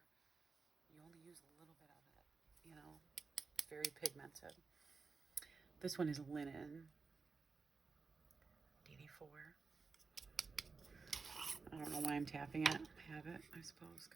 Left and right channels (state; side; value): quieter; left; 4.6 dB